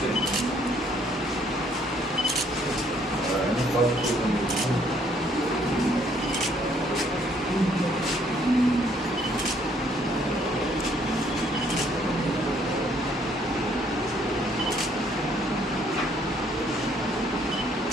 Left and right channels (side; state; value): both; normal; correlation 0.65